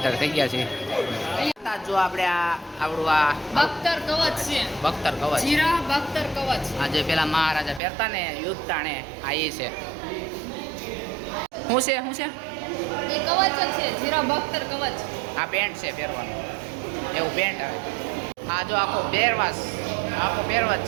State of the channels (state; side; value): drops out; left; at 7.8 s